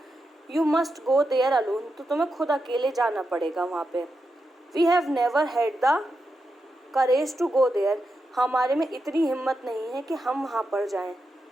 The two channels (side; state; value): both; normal; correlation 0.87